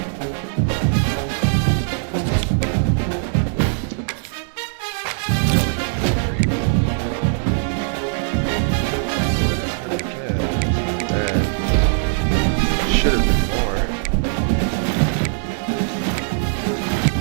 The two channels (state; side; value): silent; left; digital silence